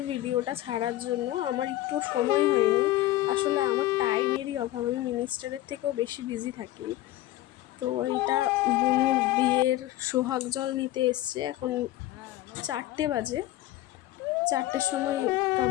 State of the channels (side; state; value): right; quieter; 15.4 dB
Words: ভিডিওটা ছাড়ার জন্য। আমার একটু সময় হয়নি, আসলে আমার টাইমেরই অভাব। আমি মিনিস্টারের থেকেও বেশি বিজি থাকি। তো এইটা বুনুর বিয়ের সোহাগ জল নিতে এসছে। এখন 4টে বাজে। 4টের সময়